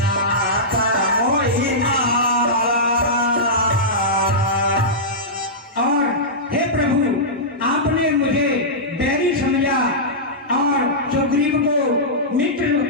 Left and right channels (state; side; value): normal; both; correlation -0.14